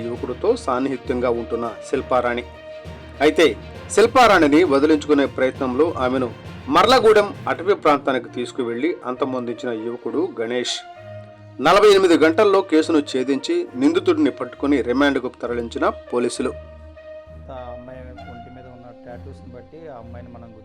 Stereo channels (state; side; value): identical; both; correlation 1.00